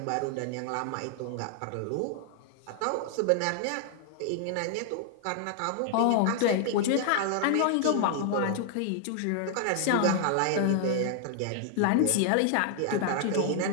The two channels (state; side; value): different; both; correlation 0.00